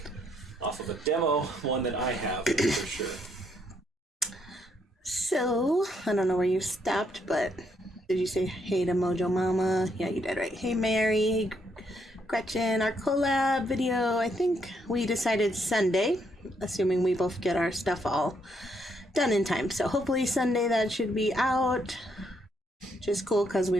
off of a demo, one that I have for sure. So, I don't know where you stopped, but did you say hey to Mojo Mama? Yeah, you did, right? Hey Mary, hey Gretchen, our collab video, I think we decided Sunday, assuming we both get our stuff all done in time. So hopefully Sunday that should be out, which is cool because we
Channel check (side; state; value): both; normal; correlation 0.74